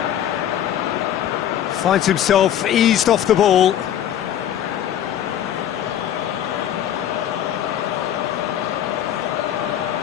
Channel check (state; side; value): quieter; right; 10.7 dB